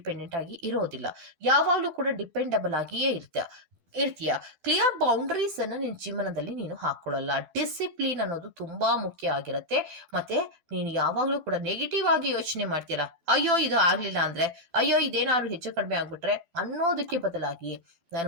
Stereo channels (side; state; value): left; late; 12 ms